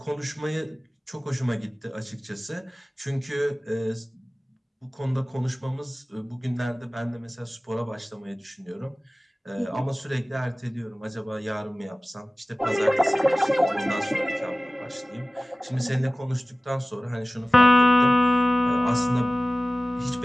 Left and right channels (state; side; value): normal; both; correlation 0.97